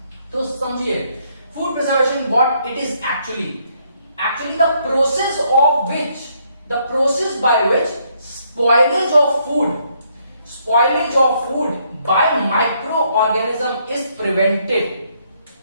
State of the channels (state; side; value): inverted; both; correlation -0.71